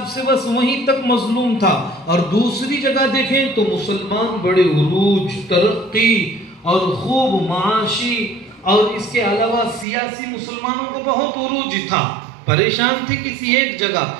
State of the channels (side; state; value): left; drops out; at 9.9 s